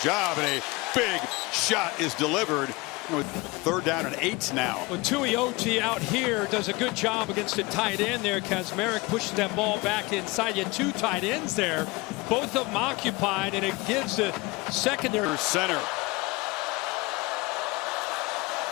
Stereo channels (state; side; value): quieter; right; 23.8 dB